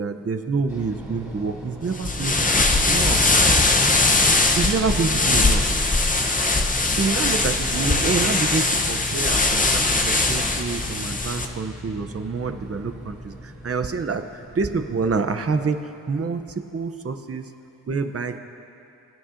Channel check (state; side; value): normal; both; correlation 0.35